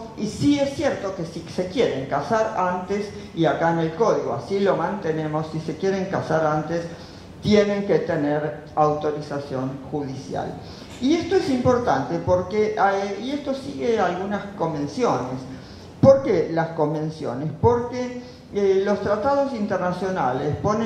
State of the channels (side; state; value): both; identical; correlation 1.00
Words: y sí es cierto que si se quieren casar antes, y acá en el código así lo mantenemos, si se quieren casar antes, tienen que tener autorización judicial. Y esto es importante porque, y esto sigue algunas convenciones. ¿Por qué las convenciones? Porque los tratados internacionales